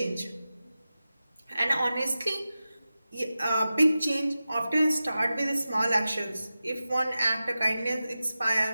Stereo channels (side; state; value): both; inverted; correlation -0.94